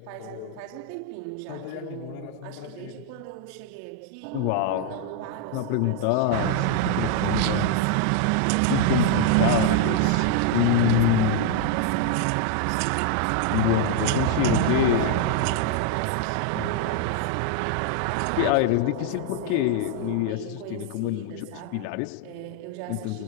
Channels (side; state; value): both; different; correlation 0.00